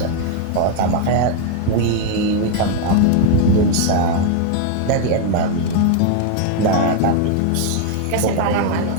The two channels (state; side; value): different; both; correlation 0.01